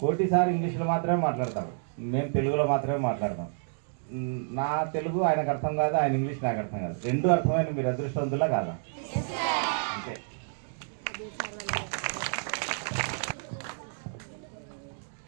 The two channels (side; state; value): left; silent; digital silence